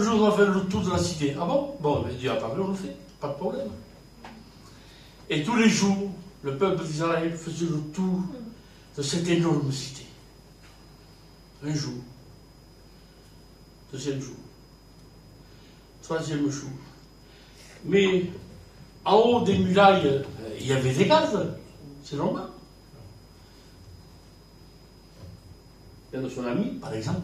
on va faire le tour de la cité. Ah bon? Bon, mais Dieu a parlé, on le fait. Pas de problème. Et tous les jours, le peuple d'Israël faisait le tour de cette énorme cité. Un jour. Deuxième jour. Troisième jour. Mais en haut des murailles, il y avait des gardes. C'est normal. Il y a de son ami, par exemple.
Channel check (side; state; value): both; identical; correlation 1.00